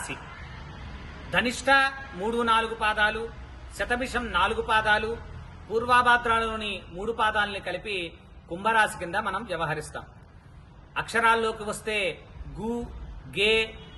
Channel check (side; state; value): both; identical; correlation 1.00